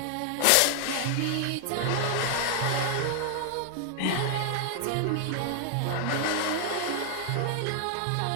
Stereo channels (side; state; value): both; different; correlation 0.00